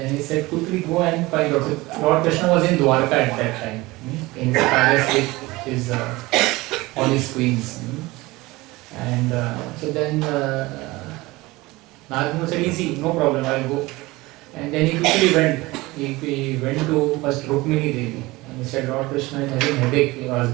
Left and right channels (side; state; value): left; quieter; 21.0 dB